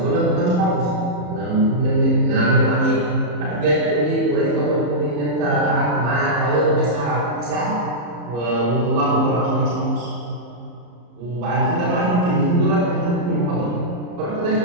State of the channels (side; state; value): left; late; 34 ms